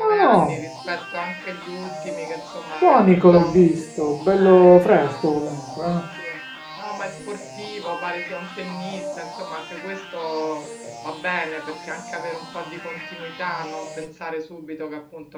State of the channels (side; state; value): both; identical; correlation 1.00